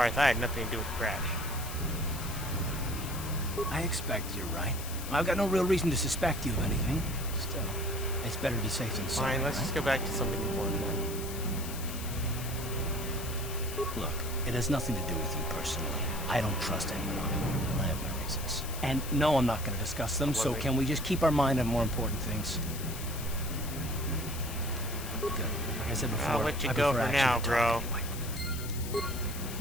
I had nothing to do with the crash. I expect you're right. I've got no real reason to suspect you of anything. Still, it's better to be safe than sorry, Fine, let's right? just go back to something important then. Look, it has nothing to do with you personally. I don't trust anyone. And I have my reasons. And no, I'm not going to discuss them, so can we just keep our mind on more important things? Good. Like I said before, I'll let you I go prefer for action now, to talk bro. anyway.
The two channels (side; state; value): left; noise; hiss, 10 dB below the sound